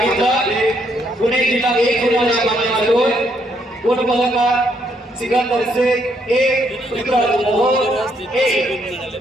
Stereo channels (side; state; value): both; normal; correlation 0.73